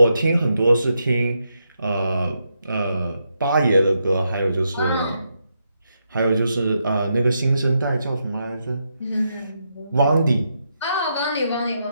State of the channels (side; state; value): both; inverted; correlation -0.82